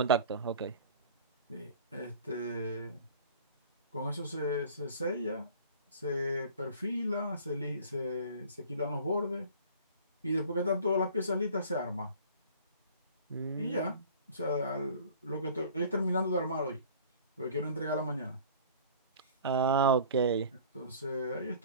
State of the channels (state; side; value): inverted; both; correlation -0.45